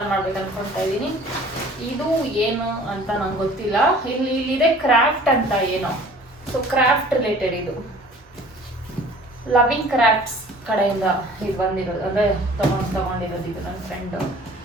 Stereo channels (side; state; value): both; normal; correlation 0.49